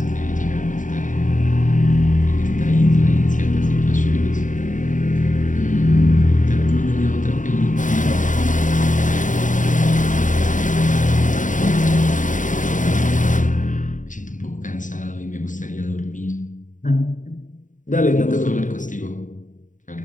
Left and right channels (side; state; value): right; late; 0.37 ms